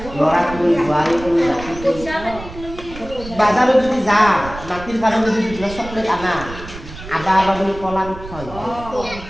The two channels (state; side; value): noise; right; rumble, 14 dB below the sound